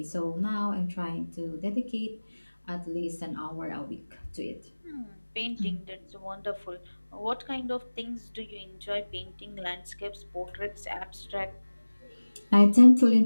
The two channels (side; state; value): both; inverted; correlation -1.00